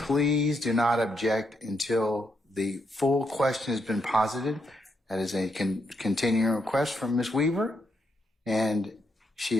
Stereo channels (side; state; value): both; normal; correlation 0.79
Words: do not object until the full question has been posited. That is a continuing request from Ms. Weaver, and she